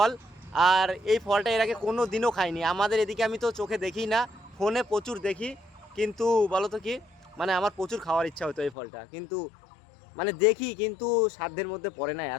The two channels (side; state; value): right; drops out; at 8.8 s